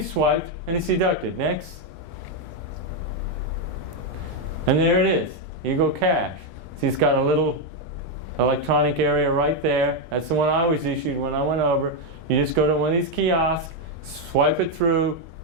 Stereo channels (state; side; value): late; left; 3.4 ms